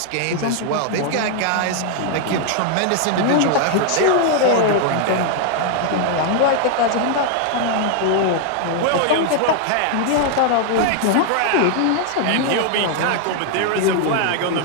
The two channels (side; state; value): both; different; correlation 0.00